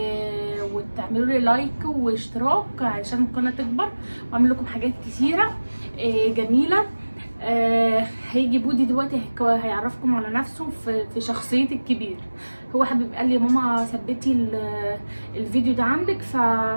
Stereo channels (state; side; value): inverted; both; correlation -1.00